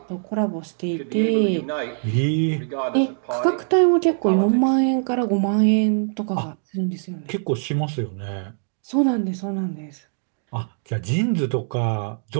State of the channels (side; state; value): left; silent; digital silence